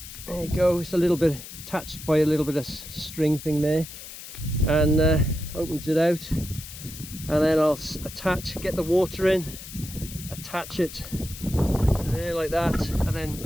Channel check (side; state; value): left; noise; hiss, 13 dB below the sound